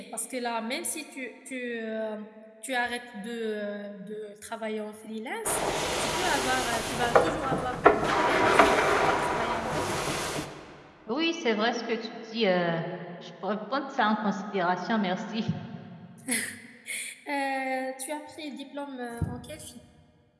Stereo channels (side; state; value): both; identical; correlation 1.00